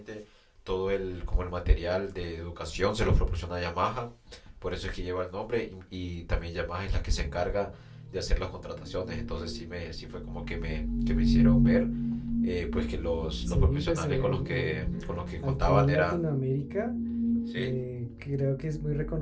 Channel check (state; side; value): identical; both; correlation 1.00